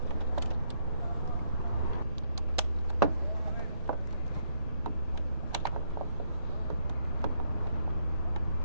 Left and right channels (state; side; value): inverted; both; correlation -0.72